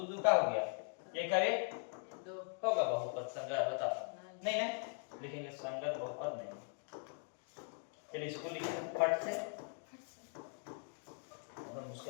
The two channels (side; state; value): right; silent; 51 dB below the other